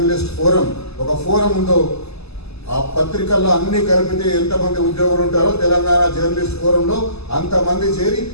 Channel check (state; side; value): late; right; 0.79 ms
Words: ఫోరం ఒక ఫోరం ఉందో, ఆ పత్రికల్లో అన్ని కలిపితే ఎంతమంది ఉద్యోగులు ఉంటారో తెలంగాణ జర్నలిస్ట్ ఫోరంలో అంతమంది చేరి